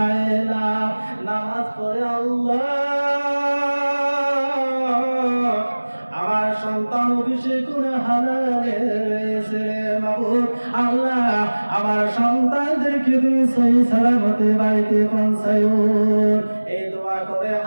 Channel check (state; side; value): inverted; both; correlation -1.00